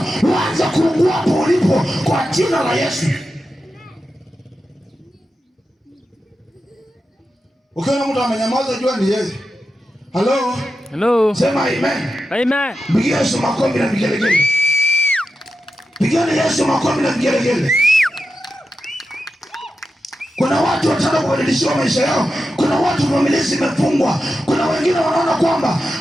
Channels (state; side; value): normal; both; correlation 0.91